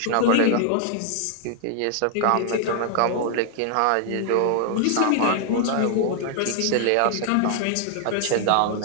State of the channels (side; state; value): both; different; correlation 0.00